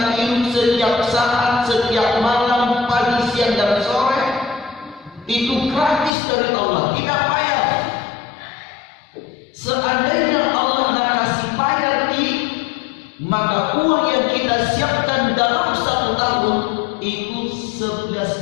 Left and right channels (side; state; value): right; drops out; at 6.1 s